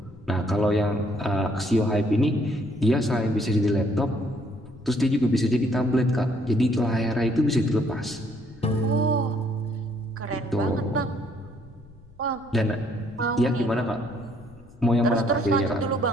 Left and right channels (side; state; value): left; noise; rumble, 24 dB below the sound